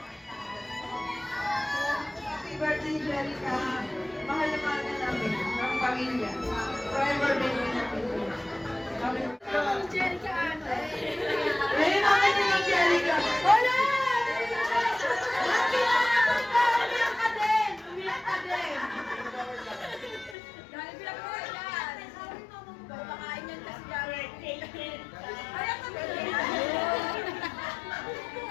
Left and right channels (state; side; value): drops out; right; at 20.4 s